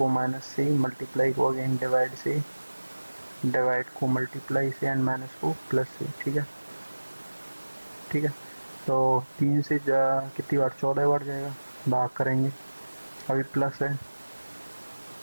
माइनस से, मल्टीप्लाई को अगेन डिवाइड से, डिवाइड को मल्टीप्लाई से, एंड माइनस को प्लस से, ठीक है, ठीक है, तो 3 से कितनी बार, 14 बार जाएगा, भाग करेंगे, अभी प्लस है,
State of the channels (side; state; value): both; inverted; correlation -1.00